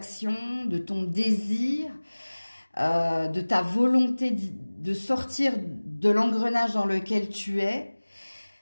de ton désir, de ta volonté de sortir de l'engrenage dans lequel tu es.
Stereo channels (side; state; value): both; inverted; correlation -1.00